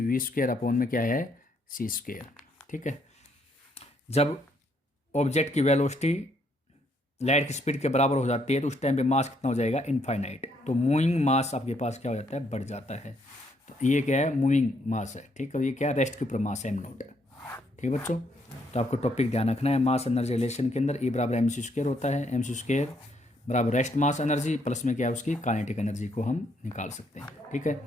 v² अपॉन में क्या है c²। ठीक है, जब ऑब्जेक्ट की वेलोसिटी लाइट की स्पीड के बराबर हो जाती है तो उस टाइम पे मास कितना हो जाएगा इनफाइनाइट, तो मूविंग मास आपके पास क्या हो जाता है बढ़ जाता है। तो ये क्या है मूविंग मास है। ठीक है, ये क्या है रेस्ट के ऊपर मास है m0। ठीक है बच्चों, तो आपको टॉपिक ध्यान रखना है, मास एनर्जी रिलेशन के अंदर E mc² होता है, mc² बराबर रेस्ट मास एनर्जी प्लस में क्या है उसकी काइनेटिक एनर्जी को हम निकाल सकते हैं। ठीक है,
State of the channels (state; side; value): normal; both; correlation 0.72